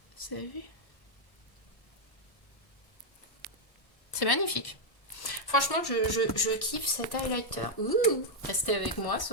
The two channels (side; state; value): right; late; 1.1 ms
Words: Vous avez vu ? C'est magnifique. Franchement, je kiffe cet highlighter. Ouh, restez avec moi